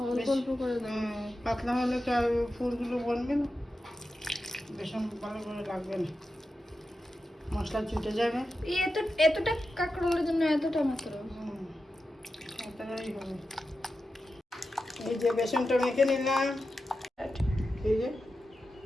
অল্প অল্প করে দাও। পাতলা হলে তো আর ফুলগুলো বনবে না, বেসন ভালো করে লাগবে না, মশলা ছুটে যাবে। এতটা কাঁকরোলের জন্য এতটা মাত্র? এতটাই হবে। এই যে বেসনটা মেখে নিলাম। এই যে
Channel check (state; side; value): normal; both; correlation 0.91